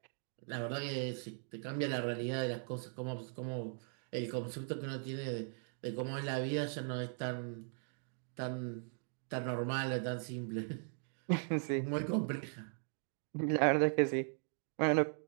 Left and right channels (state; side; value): silent; left; 52 dB below the other